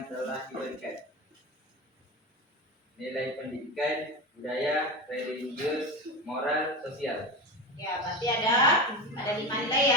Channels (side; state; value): both; normal; correlation 0.22